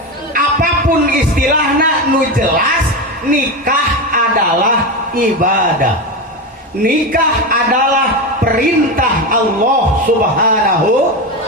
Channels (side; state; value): both; normal; correlation 0.17